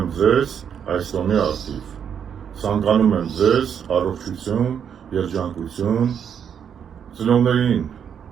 ձեզ այս տոնի առթիվ։ Ցանկանում եմ ձեզ առողջություն, երջանկություն, ծնողներին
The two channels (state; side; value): quieter; left; 8.0 dB